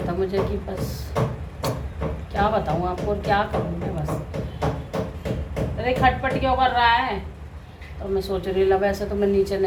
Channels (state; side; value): identical; both; correlation 1.00